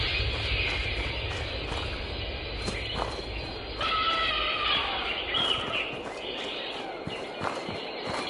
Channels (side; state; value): both; identical; correlation 1.00